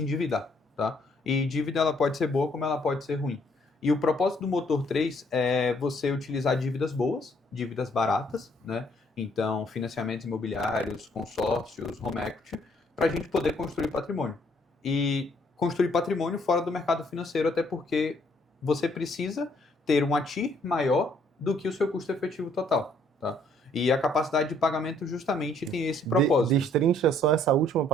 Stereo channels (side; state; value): both; normal; correlation 0.66